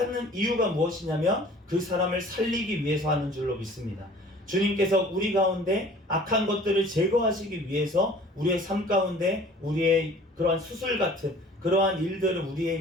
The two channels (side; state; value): both; normal; correlation 0.49